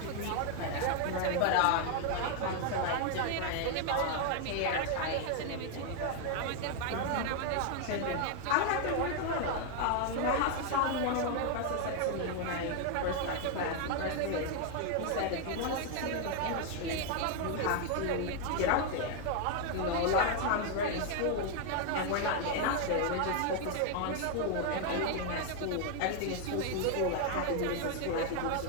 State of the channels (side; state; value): both; different; correlation 0.00